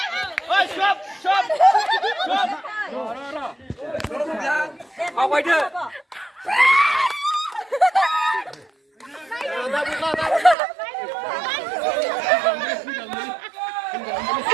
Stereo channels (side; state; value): left; drops out; at 10.6 s